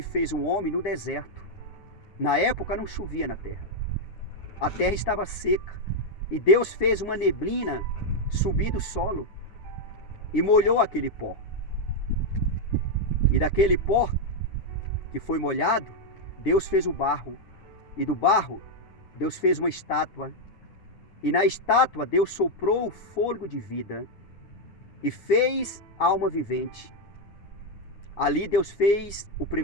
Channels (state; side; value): late; right; 9.7 ms